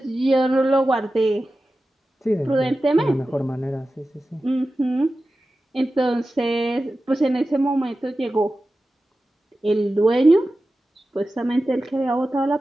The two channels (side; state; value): both; normal; correlation 0.94